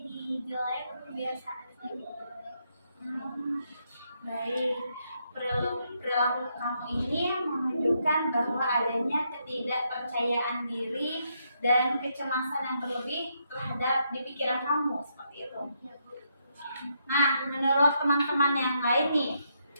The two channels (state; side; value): inverted; both; correlation -0.78